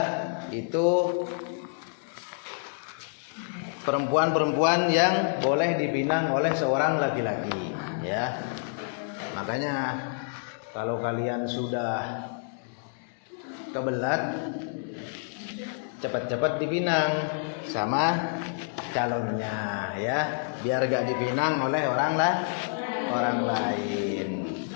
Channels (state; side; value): silent; right; digital silence